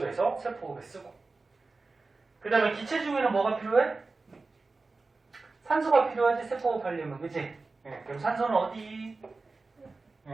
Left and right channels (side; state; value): left; quieter; 3.7 dB